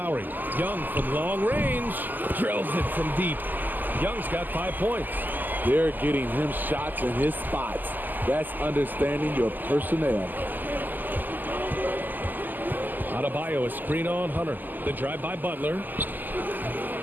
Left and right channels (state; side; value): late; left; 0.086 ms